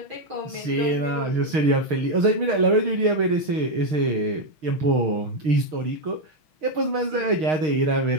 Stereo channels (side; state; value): left; late; 6.4 ms